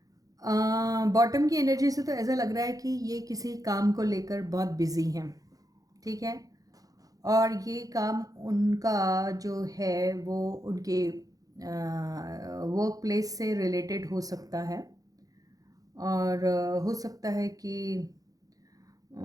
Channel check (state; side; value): late; left; 0.17 ms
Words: बॉटम की एनर्जी से तो ऐसा लग रहा है कि ये किसी काम को लेकर बहुत बिजी हैं। ठीक है, और ये काम उनका जो है वो उनके वर्क प्लेस से रिलेटेड हो सकता है, और हो सकता है कि